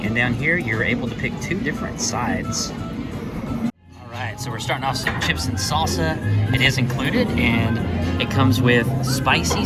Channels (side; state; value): both; identical; correlation 1.00